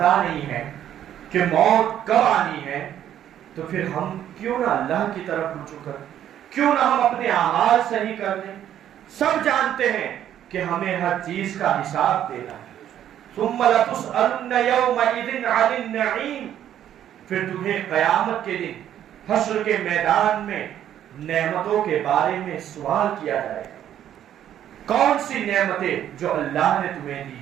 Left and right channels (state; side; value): quieter; left; 10.8 dB